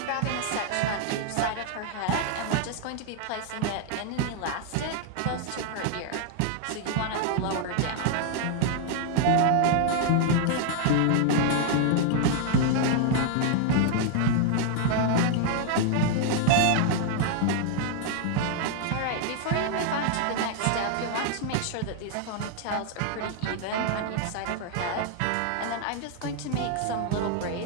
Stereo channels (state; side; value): different; both; correlation 0.00